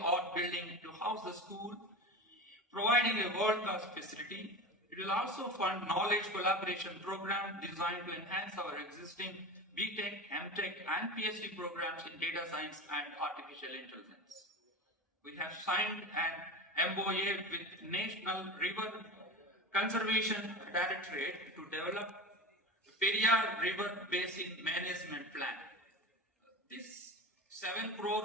building to house the school, providing a world-class facility. It will also fund knowledge collaboration program designed to enhance our existing BTech, MTech and PhD programs in data science and artificial intelligence. We have signed an MOA with National River Conservation Directorate to develop Periyar River Basin Management Plan. This 7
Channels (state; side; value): normal; both; correlation 0.28